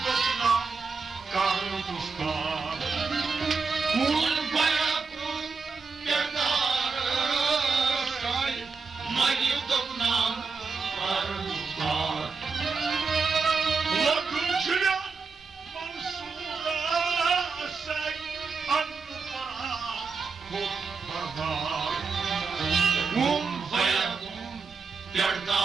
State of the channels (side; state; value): left; quieter; 4.8 dB